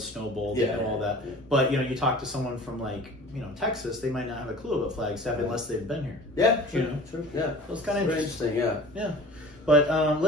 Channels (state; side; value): normal; both; correlation 0.43